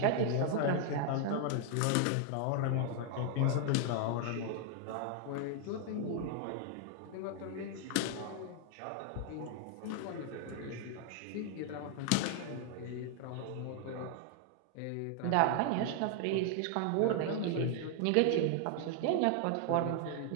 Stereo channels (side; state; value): both; different; correlation 0.00